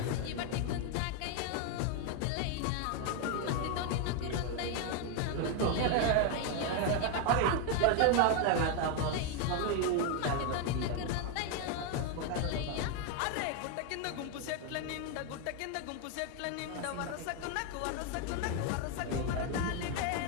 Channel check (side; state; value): both; different; correlation 0.01